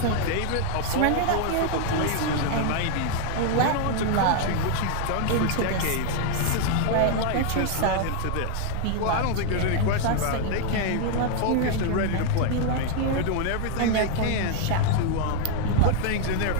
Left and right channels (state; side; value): different; both; correlation 0.00